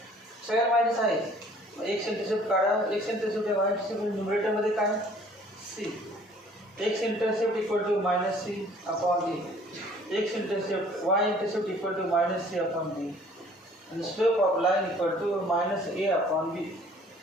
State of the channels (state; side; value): normal; both; correlation 0.55